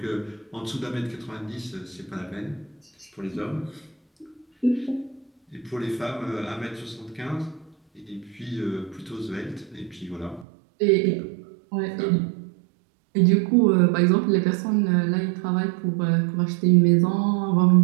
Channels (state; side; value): drops out; left; at 10.5 s